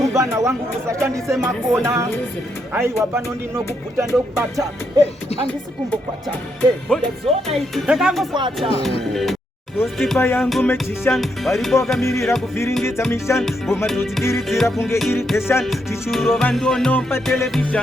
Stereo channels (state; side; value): normal; both; correlation 0.79